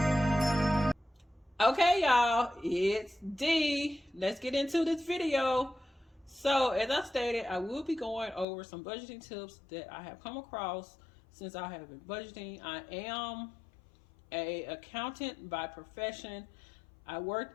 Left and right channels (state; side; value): drops out; right; at 8.5 s